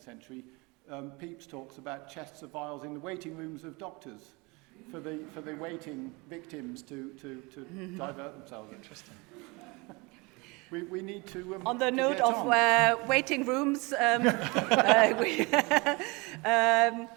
century, Pepys talks about chests of viols in the waiting rooms of doctors for the waiting victims to divert themselves. Interesting. We need to on the to note get of on. waiting rooms,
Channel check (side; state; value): left; quieter; 26.7 dB